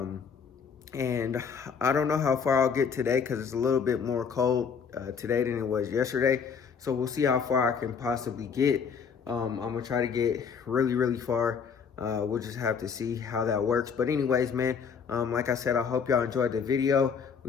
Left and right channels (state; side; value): quieter; right; 6.4 dB